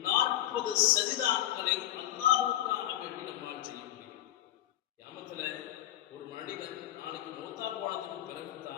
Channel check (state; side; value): quieter; right; 13.5 dB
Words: 40 சஜிதாக்களை அல்லாஹ்வுக்காக வேண்டி நம்மால் செய்ய முடியும். கியாமத்துல ஒரு மனிதன் நாளைக்கு மௌத்தா போனதுக்கு